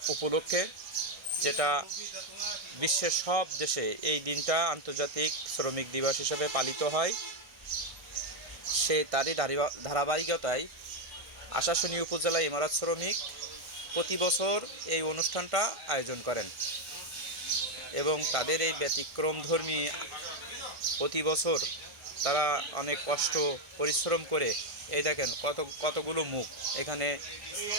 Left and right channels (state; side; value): late; left; 1.5 ms